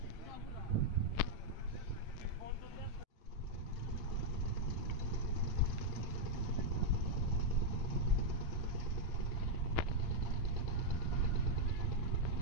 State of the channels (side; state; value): right; late; 8.7 ms